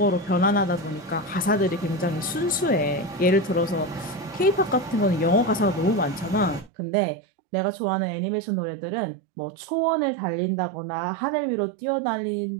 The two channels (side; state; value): left; drops out; at 6.7 s